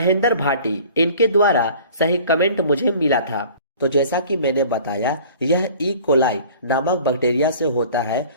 भाटी। इनके द्वारा सही कमेंट मुझे मिला था। तो जैसा कि मैंने बताया, यह ई कोलाई नामक बैक्टीरिया से होता है,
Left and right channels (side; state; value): both; inverted; correlation -0.47